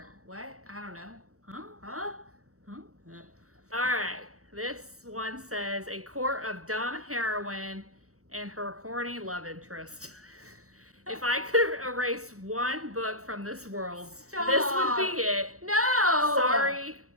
What? I don't know. Huh? Huh? Huh? All right. This one says, a court of dumb heroine and her horny love interest. If I could erase one book from this world, Stop. this would be it. No! Sorry,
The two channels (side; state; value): left; late; 0.65 ms